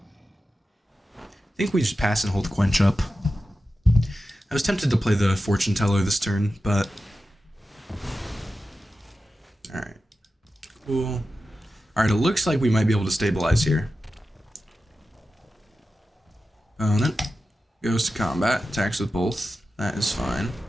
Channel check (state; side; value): normal; both; correlation 0.92